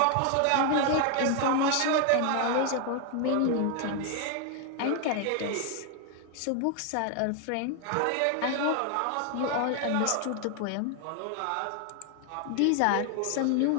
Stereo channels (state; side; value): different; both; correlation 0.00